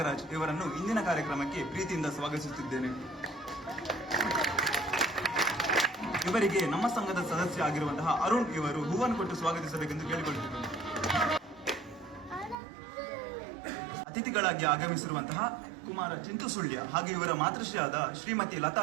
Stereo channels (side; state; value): left; drops out; at 12.6 s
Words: ಇವರನ್ನು ಇಂದಿನ ಕಾರ್ಯಕ್ರಮಕ್ಕೆ ಪ್ರೀತಿಯಿಂದ ಸ್ವಾಗತಿಸುತ್ತಿದ್ದೇನೆ. ಇವರಿಗೆ ನಮ್ಮ ಸಂಘದ ಸದಸ್ಯ ಆಗಿರುವಂತಹ ಅರುಣ್ ಇವರು ಹೂವನ್ನು ಕೊಟ್ಟು ಸ್ವಾಗತಿಸಬೇಕೆಂದು ಕೇಳಿಕೊಳ್ಳುತ್ತಿದ್ದೇನೆ. ಅತಿಥಿಗಳಾಗಿ ಆಗಮಿಸಿರುವಂತಹ ಕುಮಾರ ಚಿಂತು ಸುಳ್ಯ ಹಾಗೂ ಇವರ ಮಾತೃಶ್ರೀಯಾದ ಶ್ರೀಮತಿ ಲತಾ